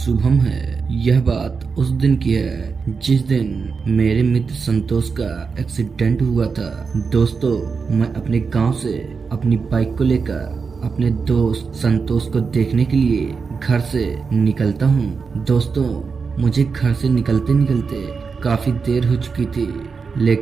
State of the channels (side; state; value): left; quieter; 5.2 dB